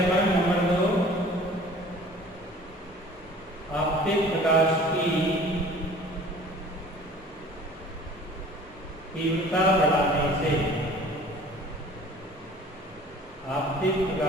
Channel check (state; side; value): normal; both; correlation 0.47